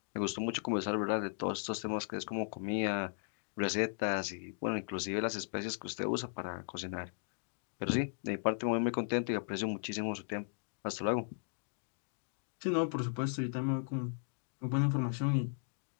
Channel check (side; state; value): right; silent; digital silence